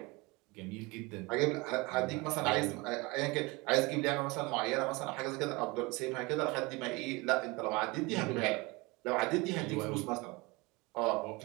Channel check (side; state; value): left; quieter; 24.9 dB